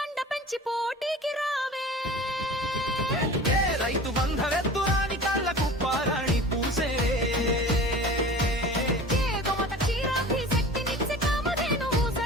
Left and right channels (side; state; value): both; normal; correlation 0.39